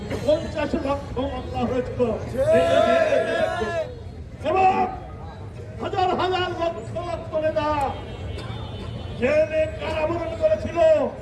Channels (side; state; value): both; identical; correlation 1.00